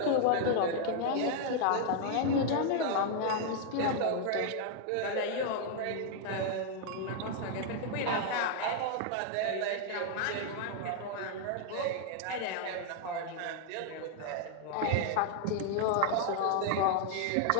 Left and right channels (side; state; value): both; different; correlation 0.00